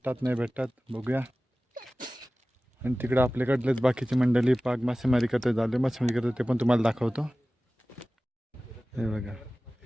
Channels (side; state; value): both; normal; correlation 0.97